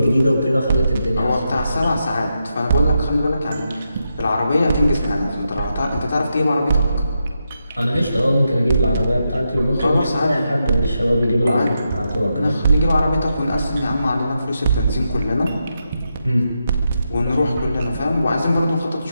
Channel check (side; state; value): both; inverted; correlation -0.85